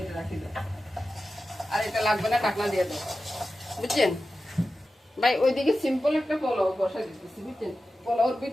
এটা রাখি দাও। আর এটা লাগবে না, ঢাকনা দিয়ে দাও, বুঝছেন ভাই? ওইদিকে সিম্পল একটা পোলাও বসা দিতেছি, বুঝছেন? পোলাওর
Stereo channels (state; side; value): normal; both; correlation 0.93